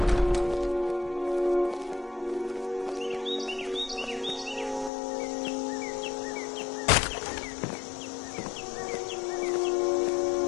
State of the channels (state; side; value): drops out; right; at 4.9 s